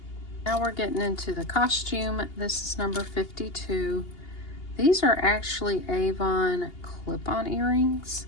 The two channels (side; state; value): right; late; 2.8 ms